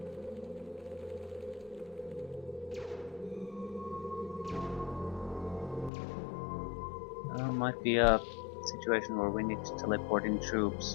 Might be a situation where we need to teleport in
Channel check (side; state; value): right; drops out; at 5.9 s